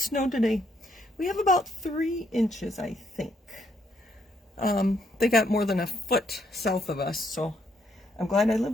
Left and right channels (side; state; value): both; normal; correlation 0.73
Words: snowed today. We have about 3 inches, I think. They got more than a foot south of us, so I'm glad I live